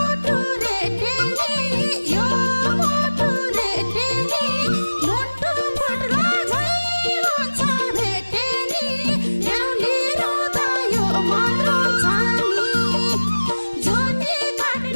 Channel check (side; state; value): both; inverted; correlation -1.00